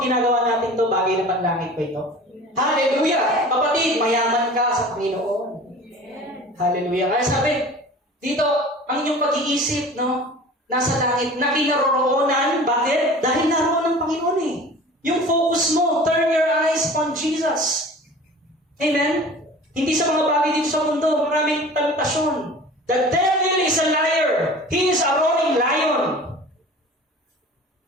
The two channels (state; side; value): normal; both; correlation 0.41